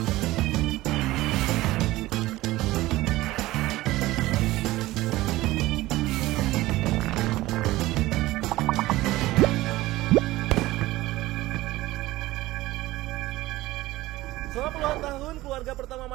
Selama puluhan tahun, keluarga pertama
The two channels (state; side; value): quieter; left; 17.8 dB